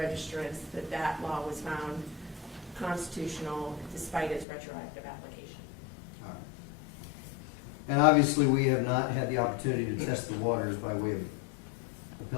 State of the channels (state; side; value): drops out; right; at 4.5 s